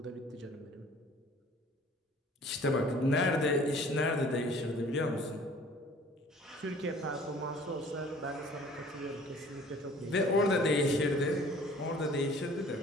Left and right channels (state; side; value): normal; both; correlation 0.51